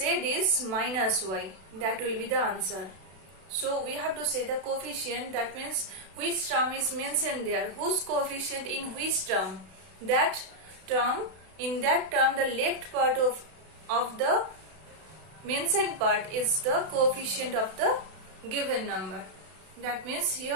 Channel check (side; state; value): left; late; 32 ms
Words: is minus y. That will be the answer. So, we have to say the coefficient, that means which term is mentioned there, whose coefficient in which term. That term, in that term, the left part of the mentioned part is the coefficient of the given number. That means